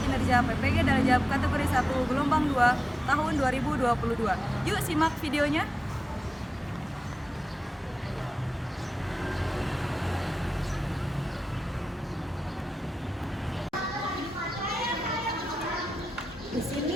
kinerja PPG Darajat kategori 1 gelombang 2 tahun 2022. Yuk simak videonya. Di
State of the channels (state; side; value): normal; both; correlation 0.93